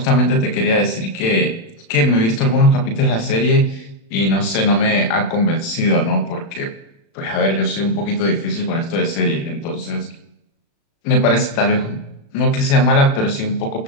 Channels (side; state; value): right; late; 36 ms